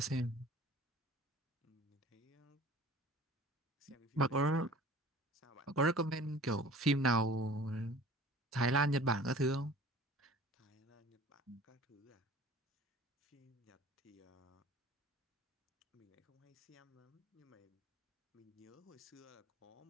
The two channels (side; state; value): both; normal; correlation 0.45